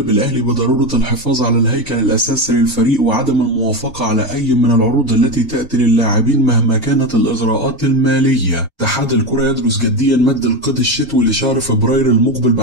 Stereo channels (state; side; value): normal; both; correlation 0.16